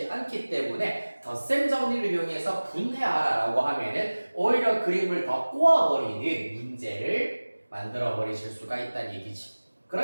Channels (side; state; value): both; inverted; correlation -1.00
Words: 않기 때문에 덧셈 정리를 이용해서 분해하라라고 하면은 오히려 그림을 더 꼬아버리는 문제를 만들어 버리실 수가 있다는 얘기지.